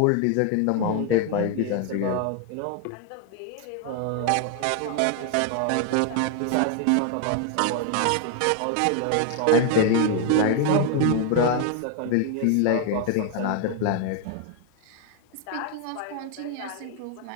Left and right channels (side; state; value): both; different; correlation 0.00